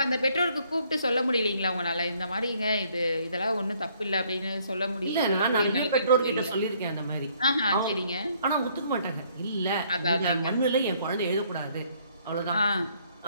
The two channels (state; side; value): inverted; both; correlation -0.64